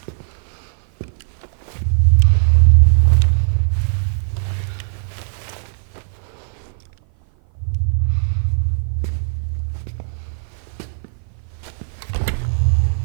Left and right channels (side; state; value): left; silent; 57 dB below the other